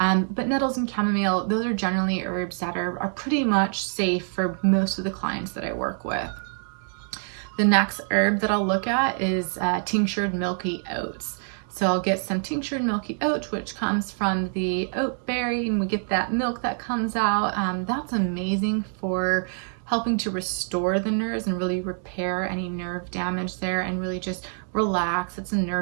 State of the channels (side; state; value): left; silent; 59 dB below the other